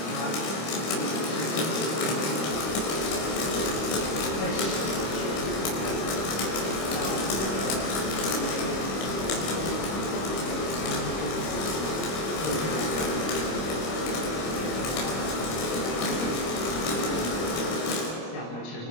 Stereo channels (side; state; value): right; late; 25 ms